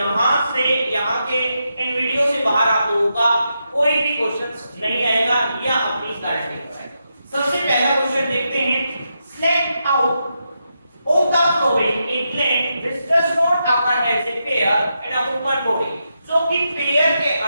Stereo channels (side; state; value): both; inverted; correlation -0.85